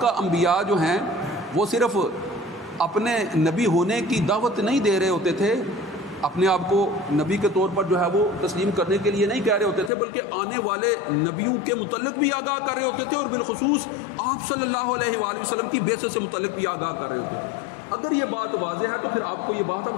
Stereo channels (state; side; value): drops out; right; at 9.9 s